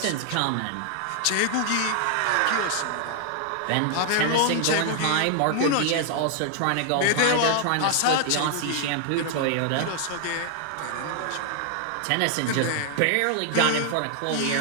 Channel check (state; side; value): different; both; correlation 0.00